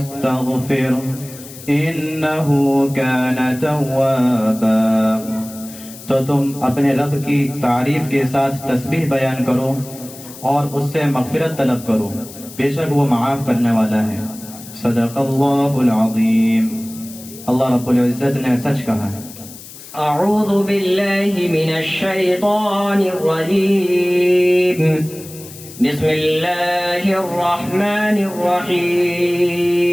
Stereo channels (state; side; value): noise; left; hiss, 16 dB below the sound